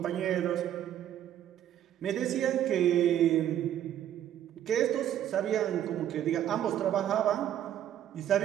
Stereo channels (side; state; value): left; quieter; 11.0 dB